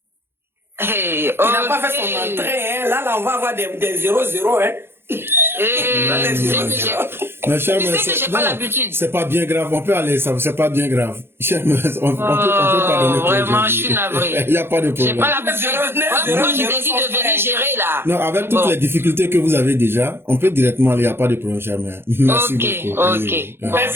Hey, il n'a pas fait son entrée, hein. Là, on va avoir des 0-0, hein. C'est pas bien grave, on peut aller, c'est pas bien grave. On peut pardonner. Vraiment, je suis navré. Il n'y a pas de problème. J'ai pas l'habitude. Moi, je décide de venir gérer là. Non, avec toutes les difficultés que vous avez déjà, on peut directement aller, il n'y a pas de problème, cher mère. Merci beaucoup. Ok.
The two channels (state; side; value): late; left; 0.11 ms